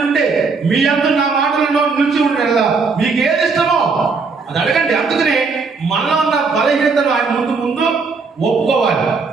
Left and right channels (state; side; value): quieter; left; 4.6 dB